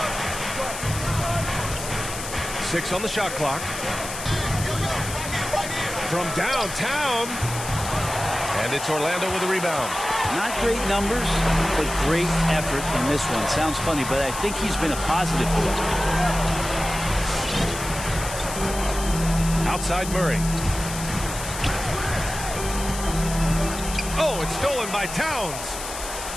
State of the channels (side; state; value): left; noise; hiss, 8 dB below the sound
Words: 6 on the shot clock. From downtown. And it's Orlando with a rebound. Not great numbers, but great effort in this one. Sounds funny, but I think he's been a positive for them. Outside Murray. Oh, it's stolen by Towns.